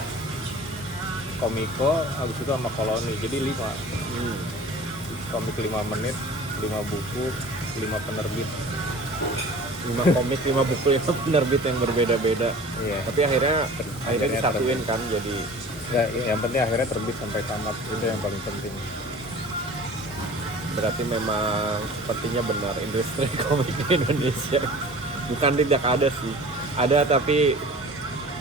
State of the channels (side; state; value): both; normal; correlation 0.43